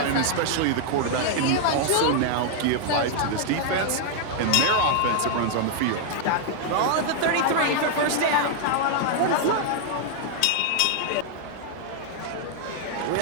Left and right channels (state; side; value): different; both; correlation 0.00